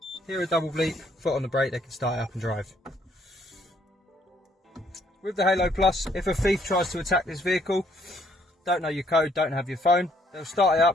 Hear a double bleep, foot on the brake, they can start it up and drive. With the Halo Plus, if a thief tries to attack this vehicle, don't know your code, don't have your phone, they'll start it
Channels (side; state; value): both; normal; correlation 0.67